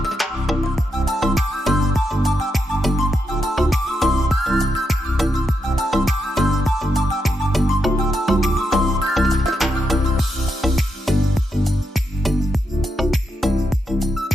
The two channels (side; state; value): both; normal; correlation 0.83